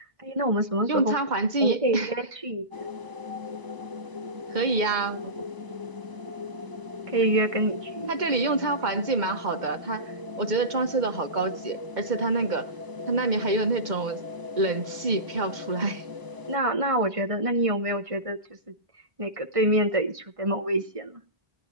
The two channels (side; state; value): left; late; 2.1 ms